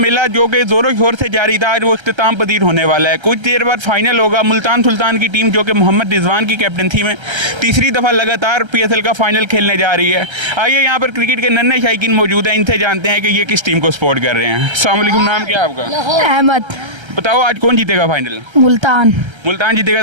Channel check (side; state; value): left; late; 1.3 ms